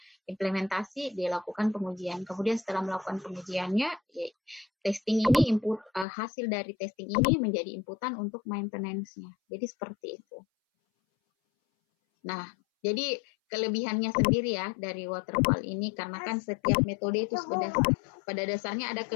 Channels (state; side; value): drops out; right; at 6.1 s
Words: implementasi, dia lakukan pengujian. Kemudian setelah melakukan pengujiannya, ya, testing ini input hasil dari testing ini menjadi inputan untuk maintenance-nya. Jadi seperti itu. Nah, jadi kelebihannya sendiri ya dari waterfall ini karena kan setiap metode itu sudah pada dasarnya ada